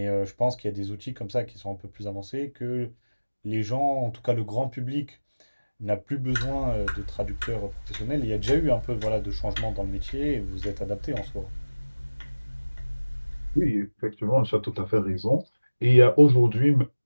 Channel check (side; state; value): both; inverted; correlation -1.00